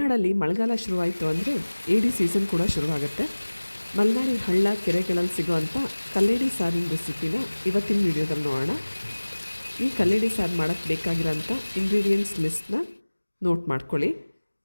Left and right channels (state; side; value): inverted; both; correlation -1.00